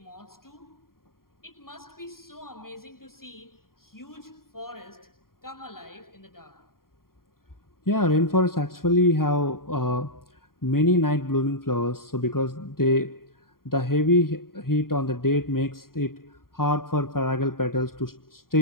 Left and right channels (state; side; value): late; right; 0.92 ms